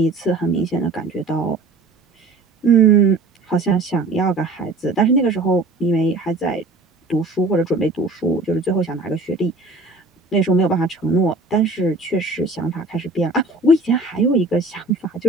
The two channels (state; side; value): quieter; left; 3.2 dB